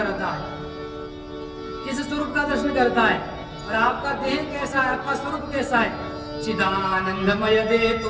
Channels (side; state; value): both; identical; correlation 1.00